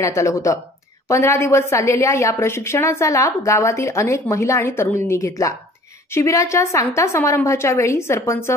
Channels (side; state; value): both; normal; correlation 0.51